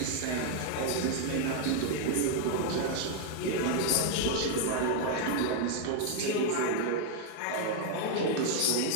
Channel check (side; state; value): both; different; correlation 0.00